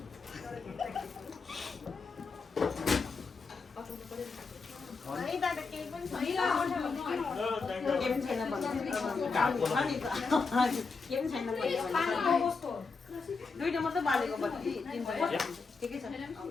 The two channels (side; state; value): right; quieter; 4.6 dB